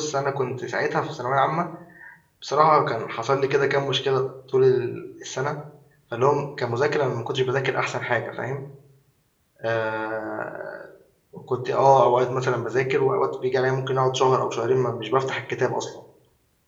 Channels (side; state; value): both; identical; correlation 1.00